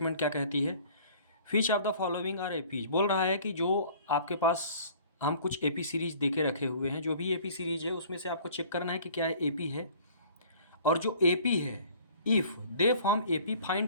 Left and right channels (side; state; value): both; inverted; correlation -0.50